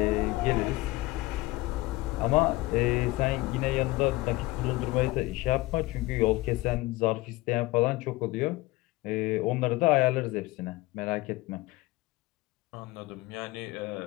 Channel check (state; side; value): quieter; right; 20.1 dB